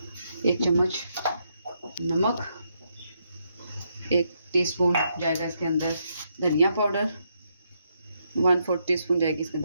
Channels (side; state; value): both; inverted; correlation -0.78